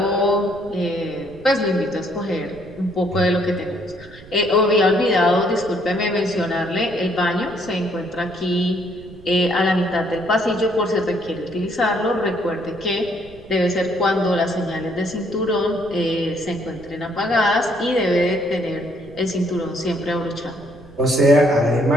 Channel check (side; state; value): right; noise; rumble, 21 dB below the sound